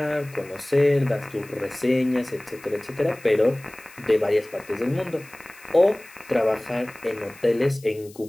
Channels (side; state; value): left; noise; hiss, 23 dB below the sound